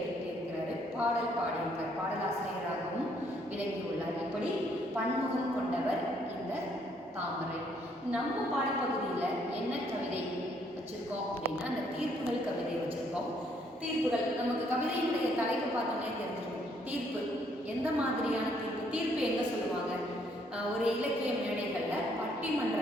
எழுதியிருக்கிறாரு. பாடல் பாடியிருக்கார், பாடலாசிரியராகவும் விளங்கியுள்ளார். இப்படி பன்முகம் கொண்டவர் இந்த தாமரை. நம்ம பாடப்பகுதியில் என்ன கவிதை வச்சுருக்கோம் அப்படின்னா, அந்த தீர்ப்புகள் கவிதை வச்சுருக்கோம். தீர்ப்புகள் நமக்கு கவிதையினுடைய தலைப்பு பார்த்தோன்னே தெரிஞ்சிருக்கும். தீர்ப்பு எந்த மாதிரியான தீர்ப்பு? தீர்ப்பு எங்கே சொல்லுவாங்க? ஒரு இலக்கிய மேடைகளில்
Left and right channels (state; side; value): normal; both; correlation 0.68